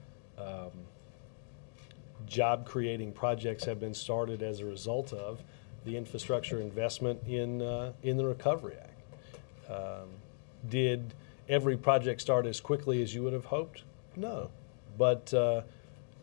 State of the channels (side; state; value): right; silent; digital silence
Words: job-creating projects have been started as a result of the infrastructure investment in the Recovery Act. Did every project start as quickly as you would have hoped? No, but